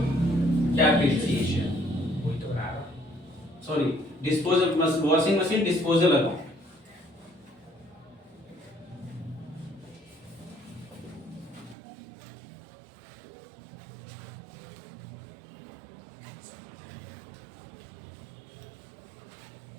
डेप्रिसिएशन, वही तो बना रहा sorry disposal washing machine disposal account.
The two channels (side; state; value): left; drops out; at 11.8 s